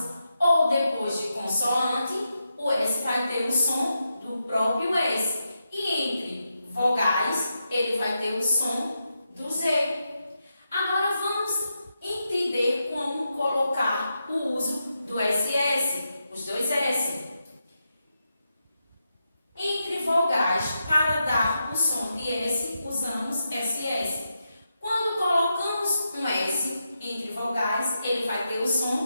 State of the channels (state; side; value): inverted; both; correlation -0.86